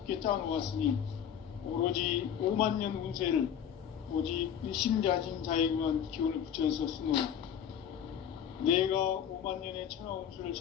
짜놓았으니 오로지 5만 년 운세를 오직 일심자진 자에게만 기운을 붙여서 쓰노라. 내가 5만 년의 천하 운수를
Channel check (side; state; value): right; quieter; 8.9 dB